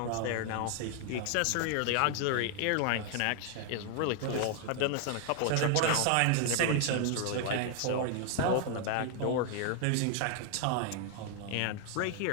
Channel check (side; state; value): both; different; correlation 0.00